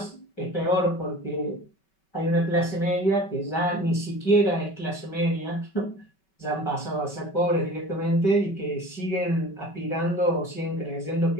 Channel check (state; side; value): late; right; 5.2 ms